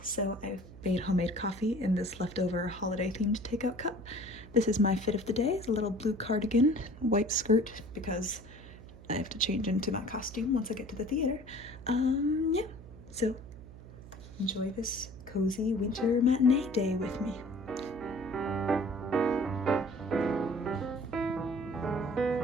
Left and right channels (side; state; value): right; noise; hum, 17 dB below the sound